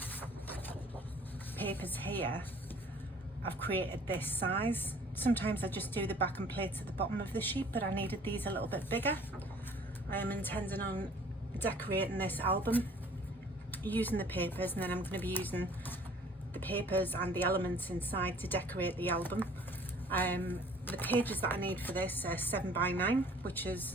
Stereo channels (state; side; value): normal; both; correlation 0.52